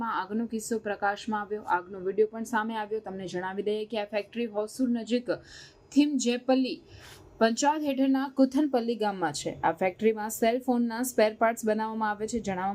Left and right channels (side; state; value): both; identical; correlation 1.00